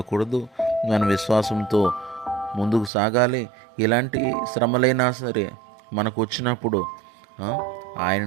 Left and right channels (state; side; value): drops out; left; at 2.9 s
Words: మన విశ్వాసంతో ముందుకు సాగాలి. ఇలాంటి శ్రమలైనా సరే మనకు వచ్చినప్పుడు